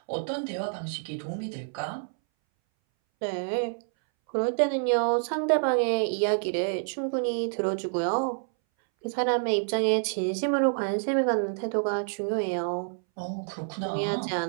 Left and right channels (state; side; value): silent; left; 59 dB below the other